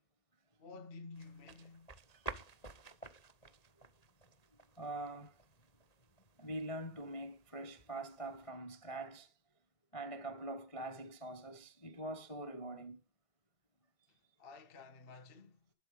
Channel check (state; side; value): late; right; 1.9 ms